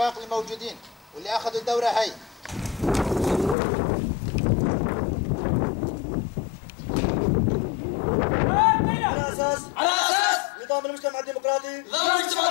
الموجودين واللي اخذوا الدورة هاي على اساس نظام المجتمع الديمقراطي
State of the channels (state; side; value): drops out; right; at 3.6 s